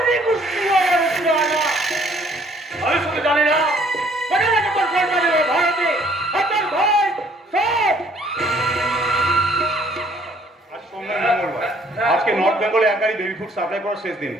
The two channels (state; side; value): normal; both; correlation 0.61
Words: আমি শুধু জানি না ভারতে আজকে নর্থ বেঙ্গলে এক গাড়ি বেবি ফুড সাপ্লাই করার শেষ দিন,